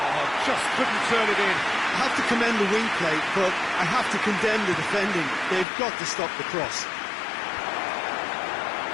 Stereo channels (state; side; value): drops out; right; at 5.7 s